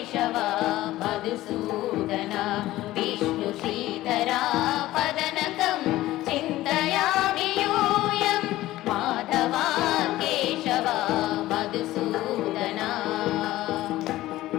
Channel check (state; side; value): quieter; right; 16.1 dB